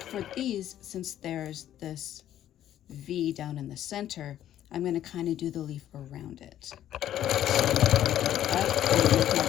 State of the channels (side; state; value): right; quieter; 11.7 dB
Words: these, since there's this V down in the center, I'm going to kind of do the leaf around it. So up and make my